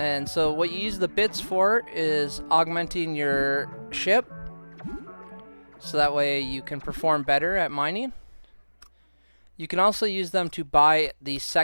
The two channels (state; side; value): inverted; both; correlation -1.00